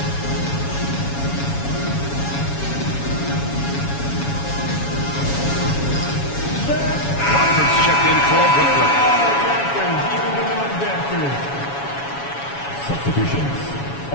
Raptors checked in for Brooklyn. Substitutions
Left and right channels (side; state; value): right; late; 7.2 ms